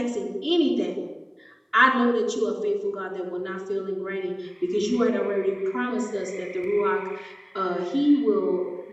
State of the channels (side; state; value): both; identical; correlation 1.00